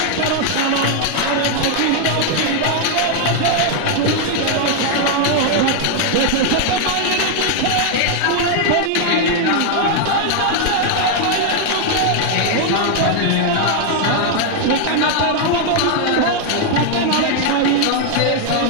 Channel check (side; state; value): both; different; correlation 0.00